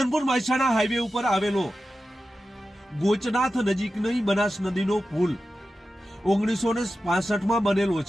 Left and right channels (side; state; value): both; normal; correlation 0.93